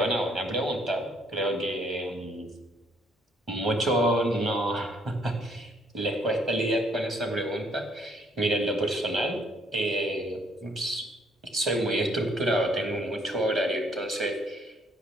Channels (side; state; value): both; normal; correlation 0.65